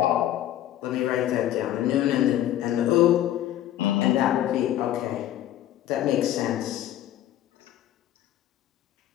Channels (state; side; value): quieter; right; 12.6 dB